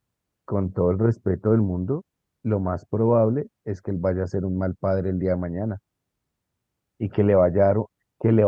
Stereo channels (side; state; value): both; identical; correlation 1.00